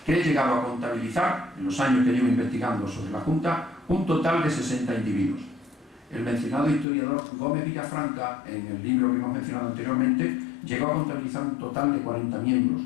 que he llegado a contabilizar, en los años que llevo investigando sobre la Junta, un total de 60 individuos. El mencionado historiador Gómez Villafranca, en el libro que hemos mencionado anteriormente, llegó a contabilizar un total de 40 miembros.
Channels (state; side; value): drops out; right; at 6.9 s